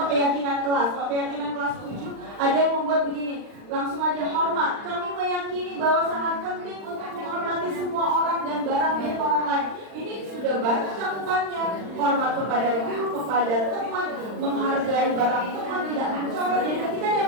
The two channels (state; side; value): late; left; 39 ms